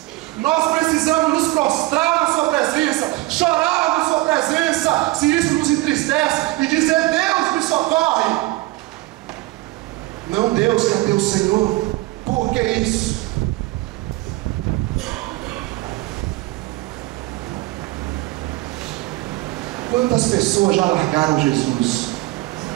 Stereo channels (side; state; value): left; quieter; 19.9 dB